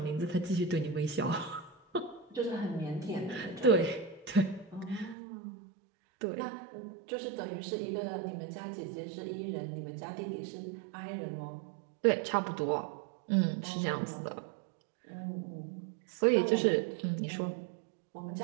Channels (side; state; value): left; drops out; at 5.2 s